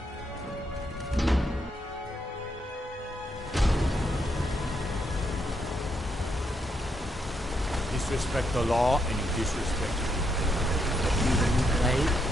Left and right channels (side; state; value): both; normal; correlation 0.78